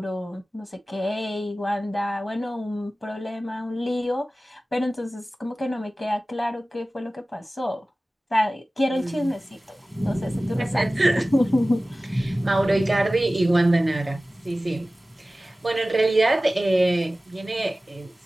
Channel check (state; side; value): normal; both; correlation 0.97